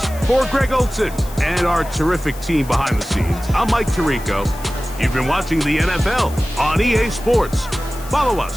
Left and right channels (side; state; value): left; noise; hiss, 18 dB below the sound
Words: For Greg Olsen and our terrific team behind the scenes, I'm Mike Tirico. You've been watching the NFL on EA Sports. Follow